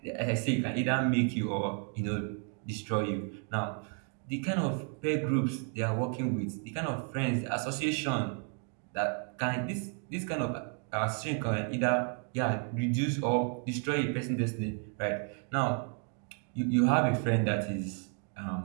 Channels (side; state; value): left; quieter; 38.9 dB